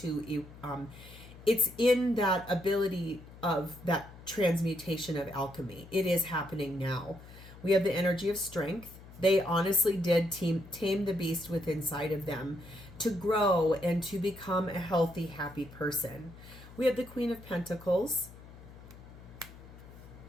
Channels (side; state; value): left; noise; hum, 18 dB below the sound